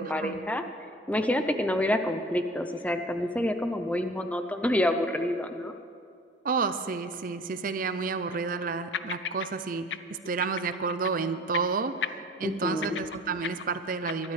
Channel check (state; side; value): normal; both; correlation 0.45